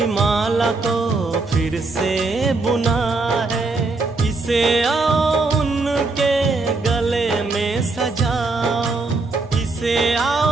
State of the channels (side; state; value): left; quieter; 3.6 dB